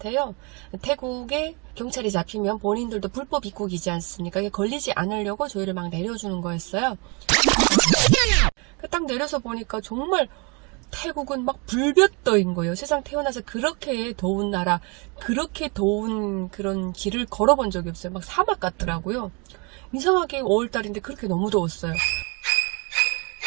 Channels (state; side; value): quieter; left; 31.4 dB